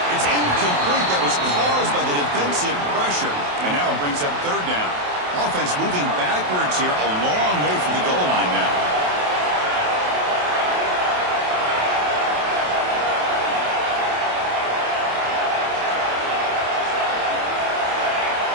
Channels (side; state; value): left; late; 28 ms